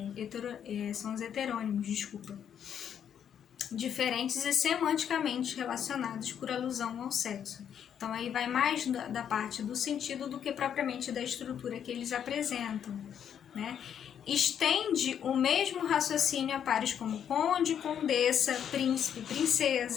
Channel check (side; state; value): right; quieter; 8.8 dB